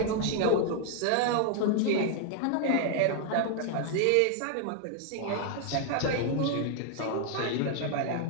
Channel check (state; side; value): different; both; correlation 0.01